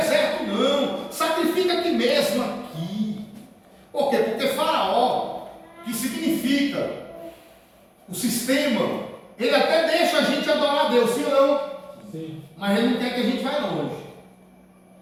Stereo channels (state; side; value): identical; both; correlation 1.00